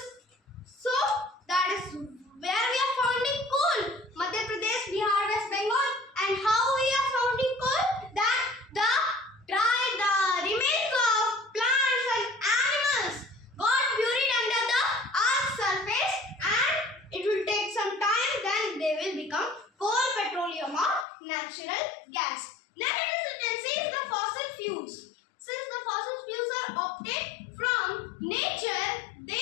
So that is where we are finding coal, Madhya Pradesh, Bihar, West Bengal. And how we are finding coal? That the remains of plants and animals got buried under the earth's surface, and it will take some time, then they will become coal, petroleum, or natural gas. Next it is the fossil fuels. Since the fossil fuels are obtained from nature,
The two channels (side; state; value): right; drops out; at 21.1 s